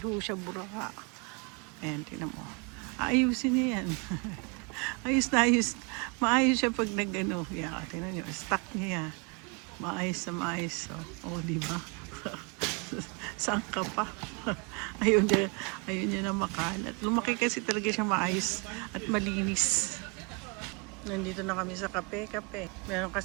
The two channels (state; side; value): quieter; left; 32.1 dB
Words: ho siya buraka. Ayan, tingnan mo. Ayusin niya yan. Ayos na ayos. Maayos siya pag nag-ano. Yeah, tingnan niyo, stock niya yan. Maayos na maayos. Oh, di ba? Saan ka pa? Ayun niya na makalat. Lumaki kasi talaga siya maayos at malinis. Nandito na kami sa kape. Meron